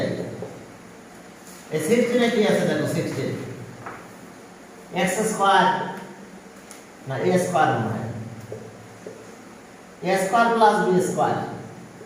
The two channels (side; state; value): both; identical; correlation 1.00